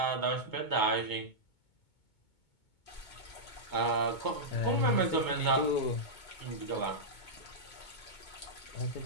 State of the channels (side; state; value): right; late; 2.2 ms